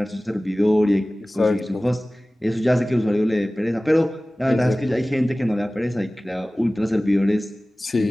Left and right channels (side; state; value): both; normal; correlation 0.98